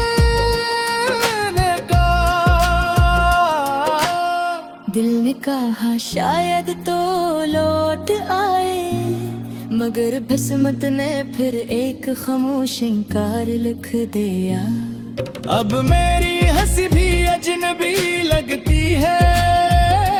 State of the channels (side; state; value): both; identical; correlation 1.00